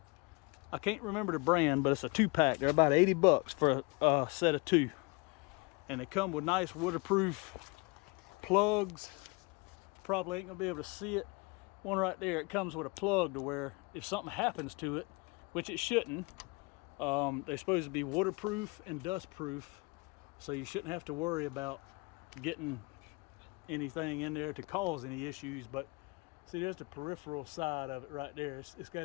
I can't remember the brand, but it's a 2-pack. They're about 80 bucks for a set of 2. And they come with nice waterproof plugs. Probably ain't gonna be able to see it. One right there, it comes with a plug to where if something happens to it, which it shouldn't, they're supposed to be waterproof and dust proof, so you shouldn't have to worry about getting anything in there to cause any issues. But see, there's the peripheral side of it right there. It's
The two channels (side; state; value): right; quieter; 28.0 dB